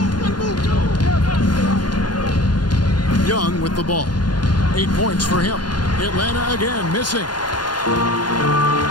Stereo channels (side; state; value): right; late; 0.71 ms